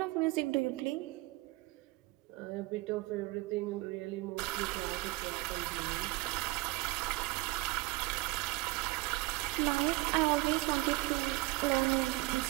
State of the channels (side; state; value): left; quieter; 21.4 dB